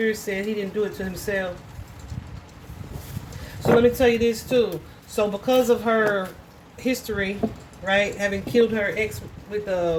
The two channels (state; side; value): identical; both; correlation 1.00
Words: said he didn't do it to himself. So let me tell you this too. So because of her history, right, having killed her ex with